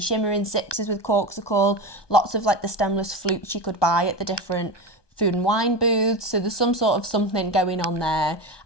Shimmering Sips is with Corkcicle. Lots of like the stemless flutes you could buy at the different food and wine booths, so there's some sort of something going on there.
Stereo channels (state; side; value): late; right; 1.2 ms